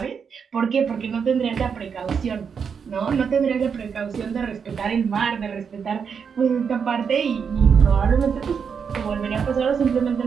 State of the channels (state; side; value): quieter; left; 6.5 dB